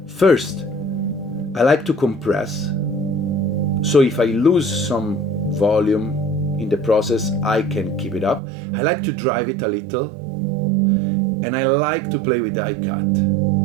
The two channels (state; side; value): drops out; left; at 8.4 s